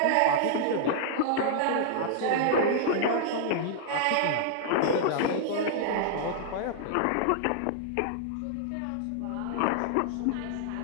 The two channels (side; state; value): both; different; correlation -0.01